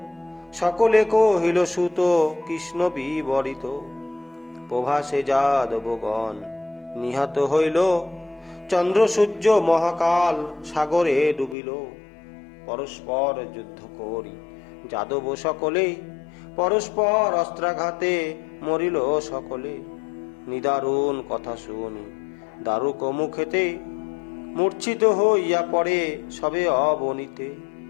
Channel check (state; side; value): drops out; right; at 11.6 s